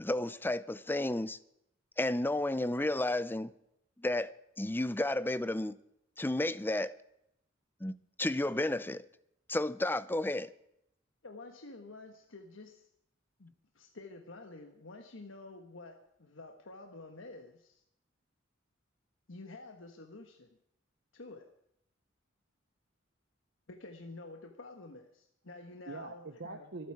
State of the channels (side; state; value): both; normal; correlation 0.75